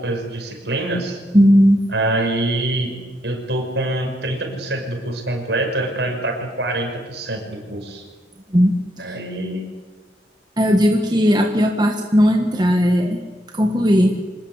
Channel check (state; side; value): normal; both; correlation 0.78